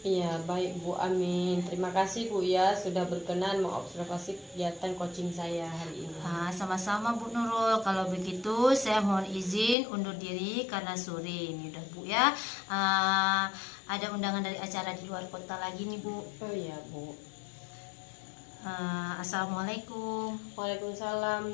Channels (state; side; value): drops out; right; at 9.8 s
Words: Iya baik Bu, amin. Terima kasih Bu ya sudah berkenan mengobservasi kegiatan coaching saya hari ini. Sama-sama Bu Nurul. Kalau begitu saya mohon izin undur diri karena sore ini udah Bu ya. Ada undangan dari acara di luar kota lagi nih Bu. Oh iya Bu. Assalamualaikum.